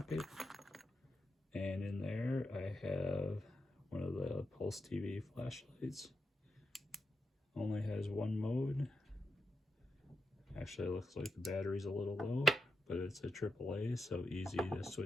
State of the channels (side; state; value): both; normal; correlation 0.86